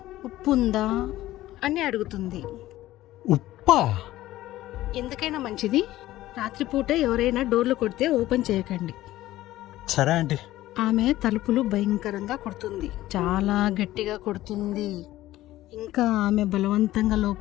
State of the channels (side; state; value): right; quieter; 15.6 dB